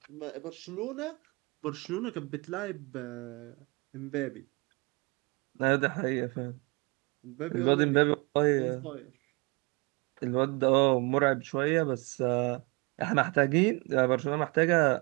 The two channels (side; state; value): left; quieter; 28.5 dB